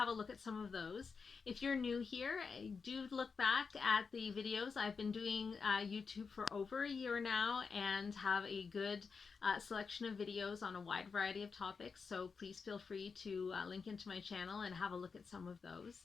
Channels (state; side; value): quieter; right; 5.2 dB